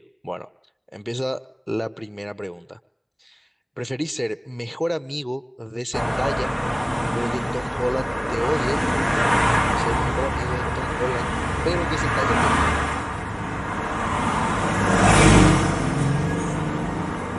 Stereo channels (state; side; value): identical; both; correlation 1.00